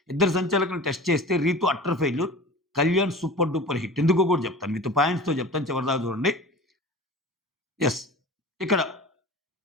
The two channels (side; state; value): both; normal; correlation 0.37